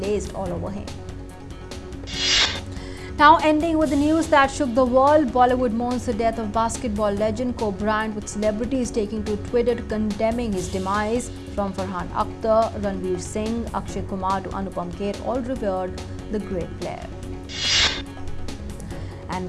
all over him. Now ending with the news that shook the world, Bollywood mourns the death of basketball legend Kobe Bryant, with celebrities taking to Twitter condemning his demise. From Farhan Akhtar, Ranveer Singh, Akshay Kumar to Anupam Kher, all revered the great player. And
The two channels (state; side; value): identical; both; correlation 1.00